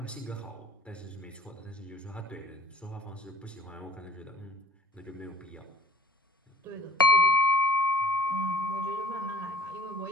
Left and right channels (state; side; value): normal; both; correlation 0.49